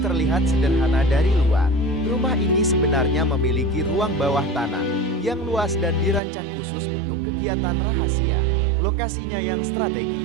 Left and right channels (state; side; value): drops out; left; at 6.2 s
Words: terlihat sederhana dari luar, rumah ini sebenarnya memiliki ruang bawah tanah yang luas dan dirancang khusus untuk kegiatan rahasia. Lokasinya yang